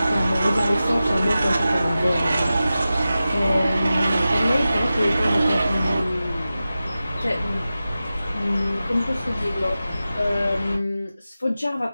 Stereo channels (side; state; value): both; inverted; correlation -0.94